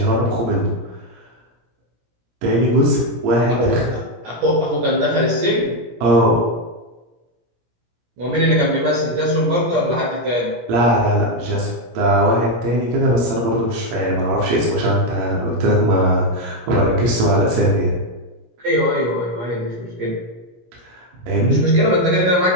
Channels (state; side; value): late; left; 17 ms